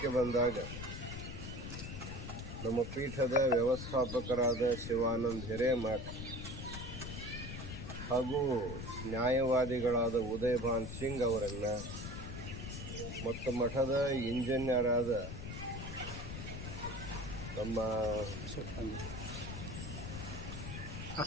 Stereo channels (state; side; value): noise; left; rumble, 7 dB below the sound